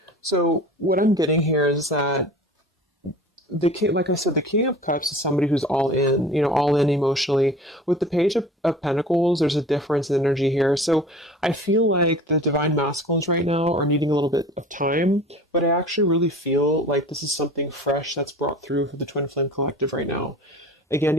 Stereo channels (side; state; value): both; normal; correlation 0.41